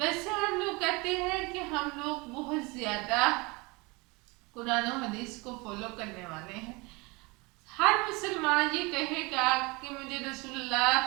ہم لوگ کہتے ہیں کہ ہم لوگ بہت زیادہ قرآن و حدیث کو فالو کرنے والے ہیں۔ ہر مسلمان یہ کہے گا کہ مجھے رسول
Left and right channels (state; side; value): quieter; left; 26.2 dB